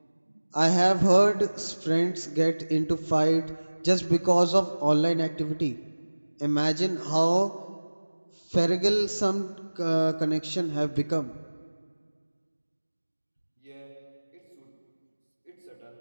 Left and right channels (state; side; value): inverted; both; correlation -1.00